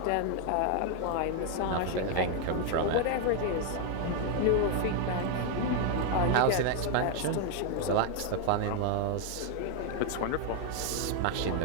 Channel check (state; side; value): different; both; correlation 0.00